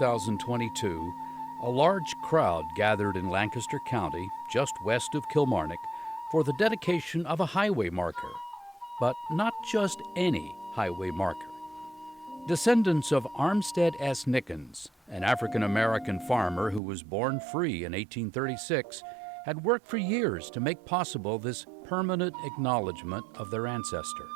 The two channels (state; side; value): drops out; left; at 16.8 s